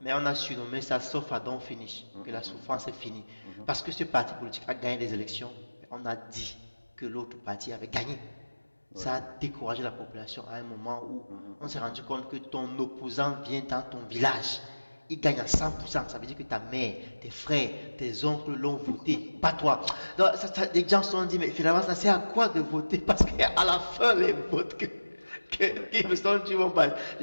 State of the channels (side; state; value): both; inverted; correlation -1.00